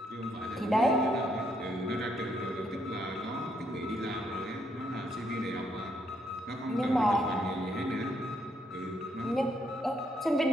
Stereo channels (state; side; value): normal; both; correlation 0.75